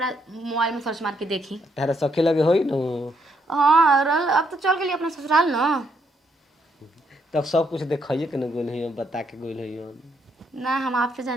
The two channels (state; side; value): normal; both; correlation 0.74